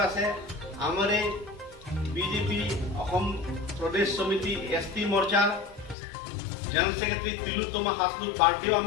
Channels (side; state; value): right; drops out; at 6.0 s